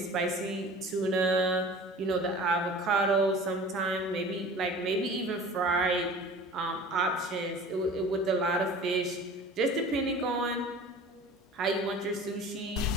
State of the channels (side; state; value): both; normal; correlation 0.42